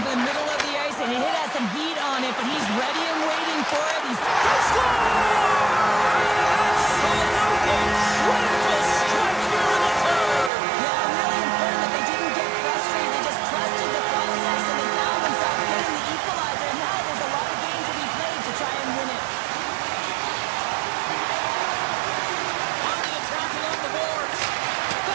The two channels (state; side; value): drops out; left; at 10.5 s